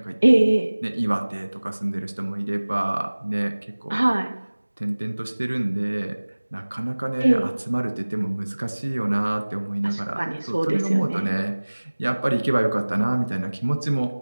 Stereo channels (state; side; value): inverted; both; correlation -1.00